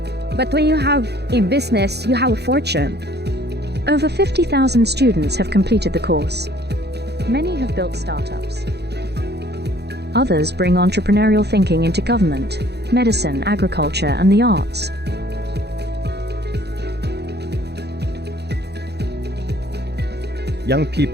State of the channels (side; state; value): left; late; 0.48 ms